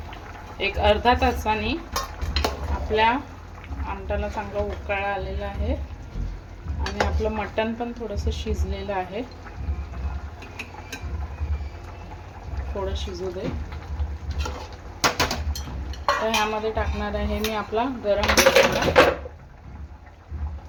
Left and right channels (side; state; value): both; identical; correlation 1.00